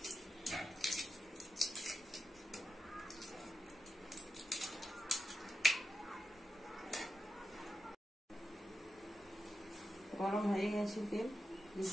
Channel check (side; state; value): both; normal; correlation 0.89